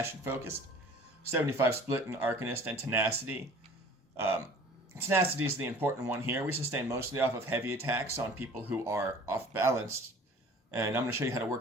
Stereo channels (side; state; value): both; normal; correlation 0.47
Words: Focused, 75 Split in Arcanist and Tenacity. Tenacity is the important one here. We sustain mostly off of heavy attacks on people who are off-balanced. And I'm going to show you how to